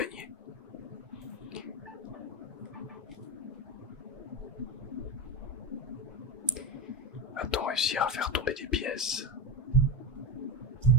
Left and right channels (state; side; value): normal; both; correlation 0.16